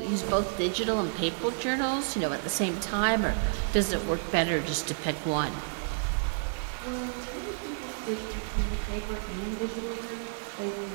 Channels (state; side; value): silent; left; 58 dB below the other